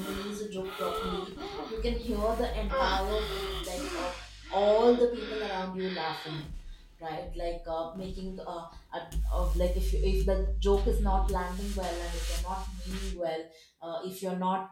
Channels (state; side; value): identical; both; correlation 1.00